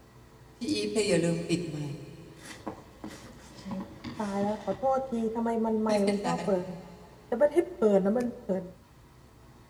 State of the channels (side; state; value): both; identical; correlation 1.00